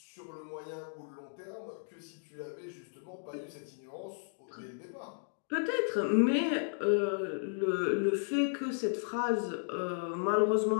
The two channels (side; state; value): right; silent; digital silence